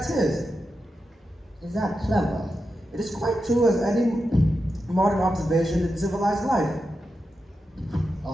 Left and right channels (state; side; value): normal; both; correlation 0.89